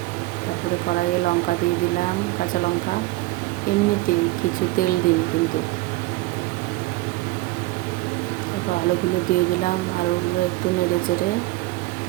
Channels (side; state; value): left; quieter; 20.0 dB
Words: তারপরে কড়াইয়ে লঙ্কা দিয়ে দিলাম, কাঁচা লঙ্কা। এমনিতেই, কিছু তেল দিইনি কিন্তু। তারপর আলুগুলো দিয়ে দিলাম। আলুগুলো একটু নেড়ে চেড়ে